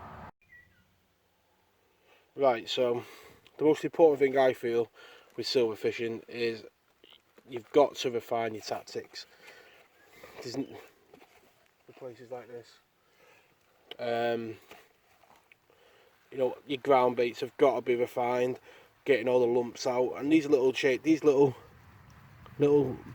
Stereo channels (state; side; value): identical; both; correlation 1.00